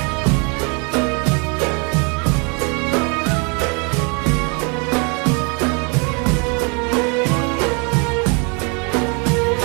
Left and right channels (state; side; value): quieter; left; 32.6 dB